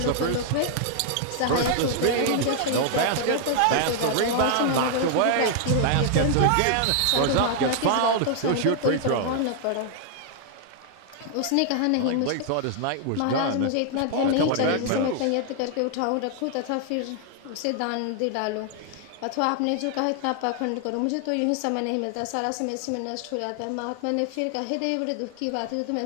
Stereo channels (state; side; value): different; both; correlation 0.00